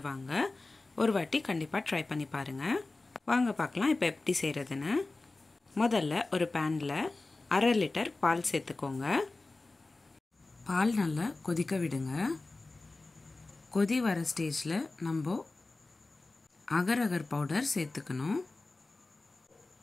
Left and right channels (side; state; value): right; quieter; 3.3 dB